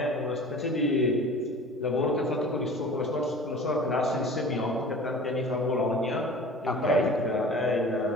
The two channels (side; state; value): both; normal; correlation 0.42